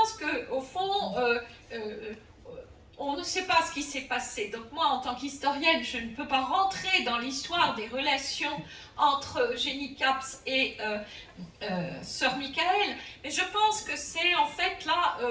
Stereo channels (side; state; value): both; identical; correlation 1.00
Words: qu'au fond, on ne sait pas ce qui s'est passé. Donc moi, en tant qu'historienne, je ne peux pas rentrer dans l'histoire des relations entre Eugénie Caps et Sœur Michael, mais je pense que c'est en fait là,